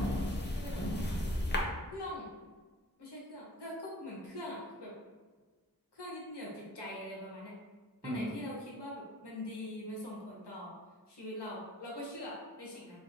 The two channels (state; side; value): normal; both; correlation 0.50